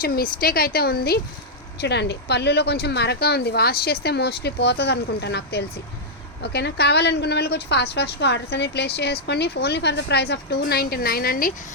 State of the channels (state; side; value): normal; both; correlation -0.05